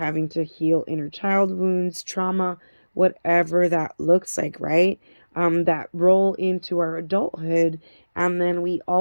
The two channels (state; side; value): inverted; both; correlation -1.00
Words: to heal inner child wounds, trauma, whatever that looks like, right? That roll into our adulthood. And then we